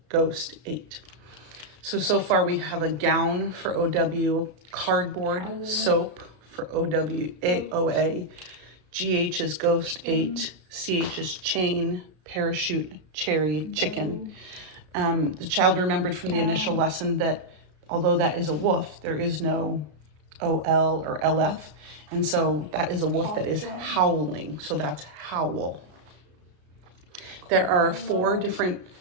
Ghost, 8. So far we have a gown for OW, cardboard, soap for OA, GH is ghost, 8, CH is chain, parachute, cherry, chicken. The child remembered from the initial lesson that although that is a wolf, there is no OL or LF. And so that is a wolf that is howling. So that's howl. There are 4 different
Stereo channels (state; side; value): late; left; 33 ms